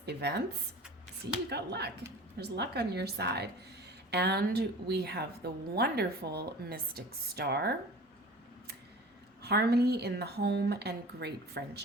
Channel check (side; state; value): both; normal; correlation 0.40